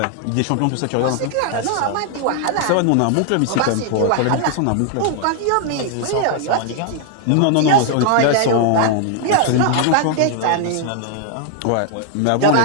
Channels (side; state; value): both; different; correlation 0.00